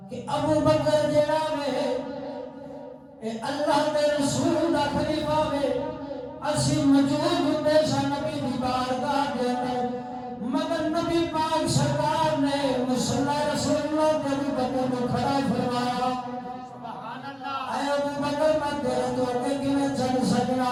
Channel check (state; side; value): identical; both; correlation 1.00